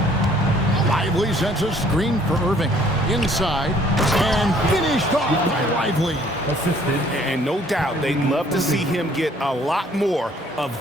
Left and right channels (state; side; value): normal; both; correlation 0.59